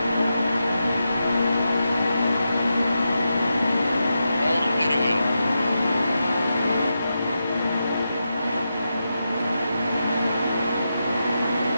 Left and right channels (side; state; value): both; inverted; correlation -0.88